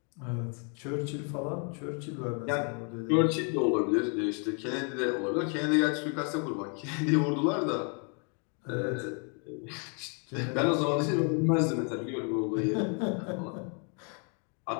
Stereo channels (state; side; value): quieter; right; 38.2 dB